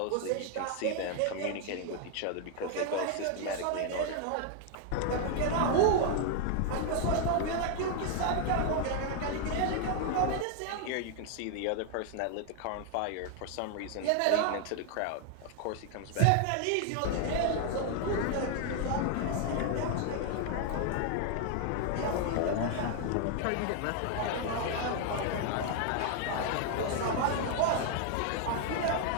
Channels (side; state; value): both; different; correlation 0.00